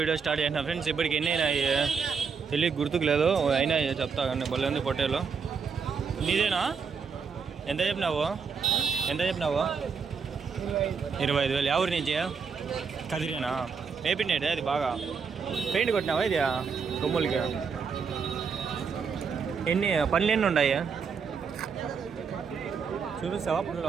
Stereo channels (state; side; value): quieter; left; 5.8 dB